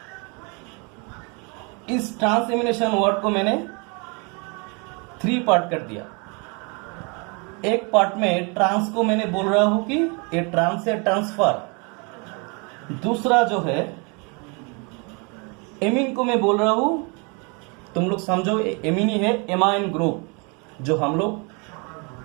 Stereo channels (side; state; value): left; quieter; 32.6 dB